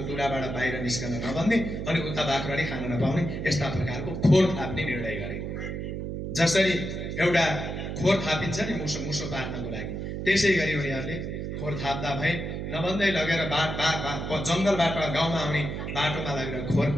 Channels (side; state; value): right; noise; hum, 5 dB below the sound